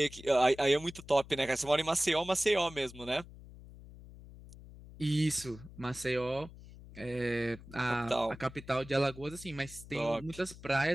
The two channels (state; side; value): noise; left; hum, 17 dB below the sound